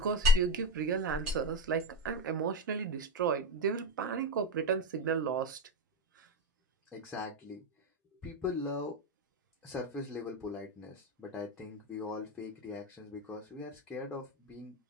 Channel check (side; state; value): both; normal; correlation 0.13